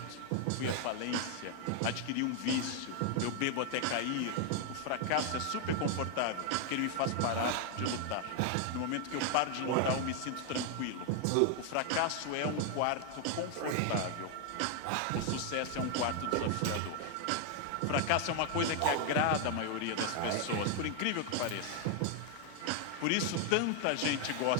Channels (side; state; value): both; different; correlation 0.00